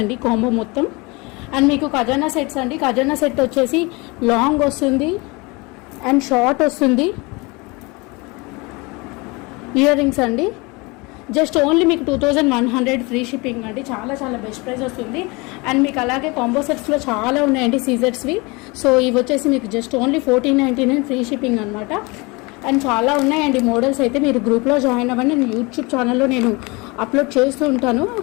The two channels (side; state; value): right; quieter; 26.3 dB